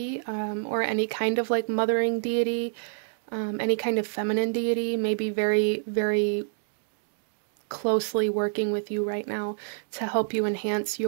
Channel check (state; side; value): silent; left; digital silence